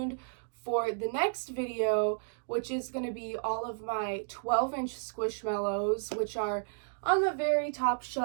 for the next video, which is going to be all of my 12-inch Squishmallows, which are on the very top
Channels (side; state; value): left; silent; digital silence